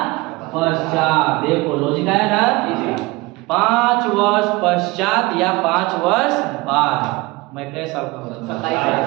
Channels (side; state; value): left; quieter; 22.5 dB